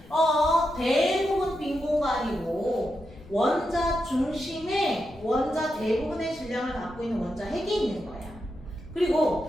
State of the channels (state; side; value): noise; left; rumble, 21 dB below the sound